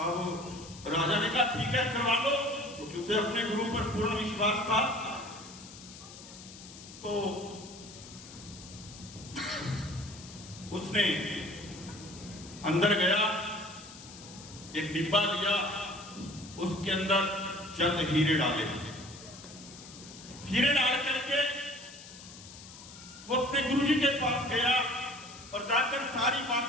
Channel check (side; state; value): left; noise; hiss, 16 dB below the sound